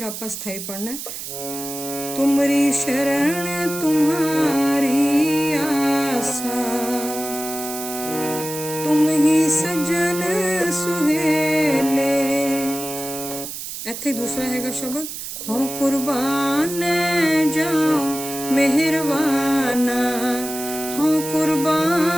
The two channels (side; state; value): right; noise; hiss, 8 dB below the sound